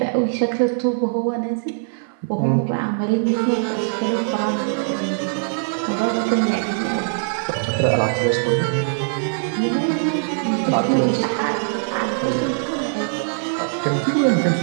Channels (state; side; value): silent; left; 56 dB below the other